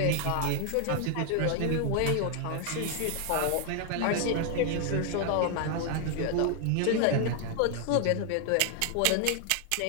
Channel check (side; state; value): both; different; correlation 0.00